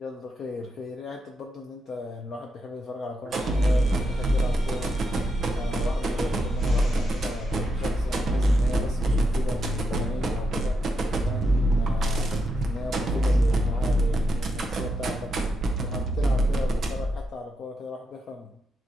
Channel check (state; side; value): normal; both; correlation 0.83